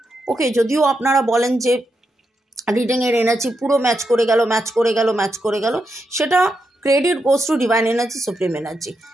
ওকে, যদিও আপনারা বলেন যে রিডিংয়ের এনার্জি পুরো ম্যাচ করে গেল, সেটা credit goes to divine energy, supreme energy.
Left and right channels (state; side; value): normal; both; correlation 0.84